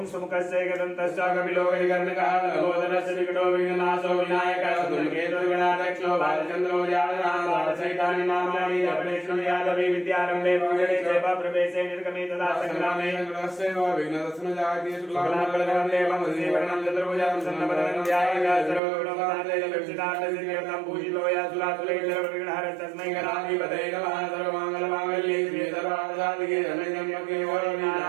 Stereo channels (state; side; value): drops out; left; at 18.8 s